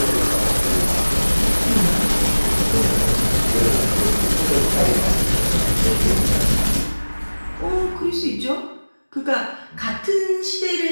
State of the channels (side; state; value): both; inverted; correlation -1.00